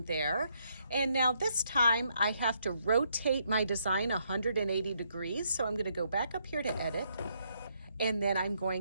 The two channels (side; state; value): both; inverted; correlation -0.74